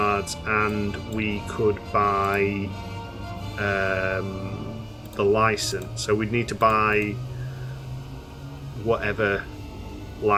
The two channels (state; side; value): identical; both; correlation 1.00